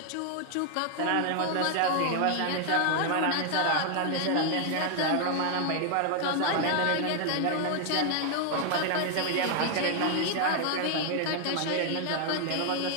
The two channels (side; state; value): both; different; correlation 0.00